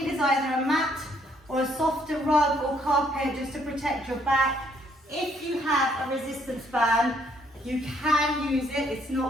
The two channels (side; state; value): both; normal; correlation 0.68